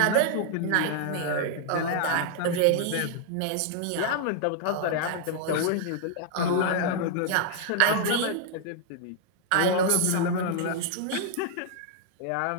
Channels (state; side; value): different; both; correlation -0.01